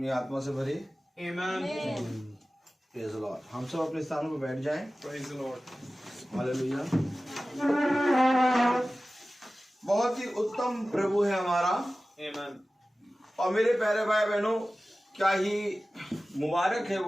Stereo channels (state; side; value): normal; both; correlation 0.96